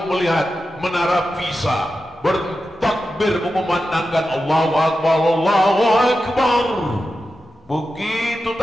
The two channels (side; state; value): both; normal; correlation 0.91